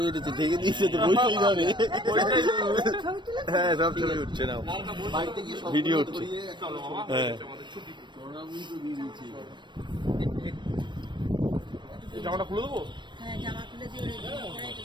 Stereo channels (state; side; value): late; left; 0.22 ms